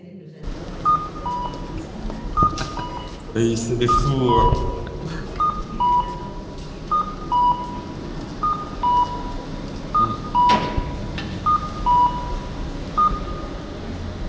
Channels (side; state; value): both; identical; correlation 1.00